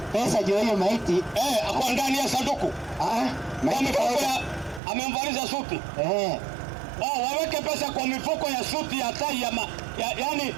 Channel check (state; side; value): drops out; left; at 4.8 s